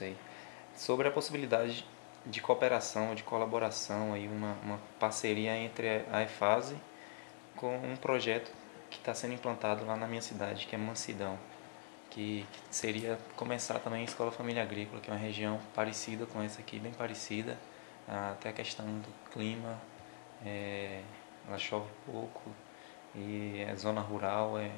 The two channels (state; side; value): silent; right; digital silence